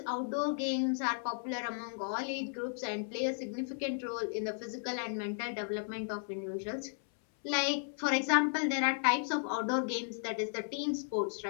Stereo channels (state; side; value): silent; right; 55 dB below the other